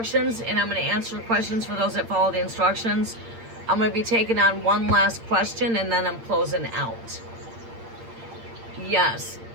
and I'm going to answer questions for those that follow the instructions. I'm going to be taking on one last question, and then I'm closing out. Yes.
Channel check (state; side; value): late; left; 8.8 ms